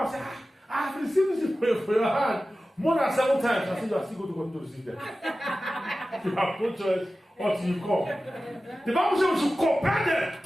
said, I have received this for your hand more than 7 times. I said, you are still going to continue to receive them. You have no choice until you come. The Bible says we should compel them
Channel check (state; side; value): normal; both; correlation 0.95